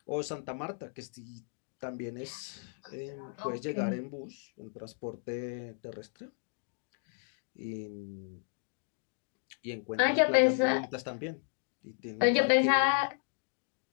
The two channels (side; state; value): right; silent; 55 dB below the other